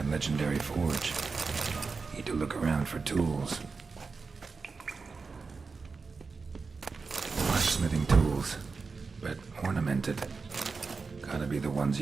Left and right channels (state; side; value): quieter; left; 4.6 dB